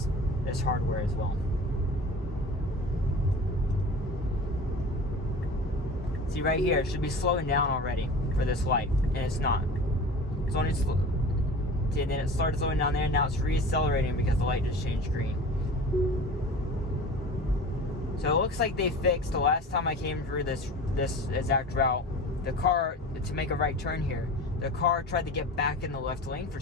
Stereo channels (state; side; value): normal; both; correlation 0.37